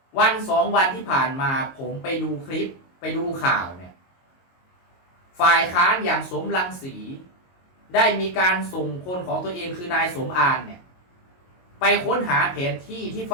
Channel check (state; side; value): late; right; 22 ms